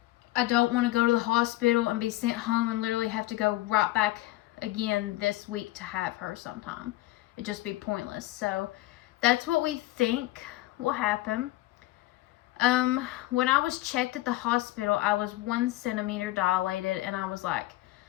I don't want to go to the hospital and be sent home and literally have to go right back again this week to have her sometime. It'd just be pointless. So that's what we think will happen. When I was checked at the hospital, I was 1 centimeter dilated, and I was like,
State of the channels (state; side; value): quieter; right; 17.7 dB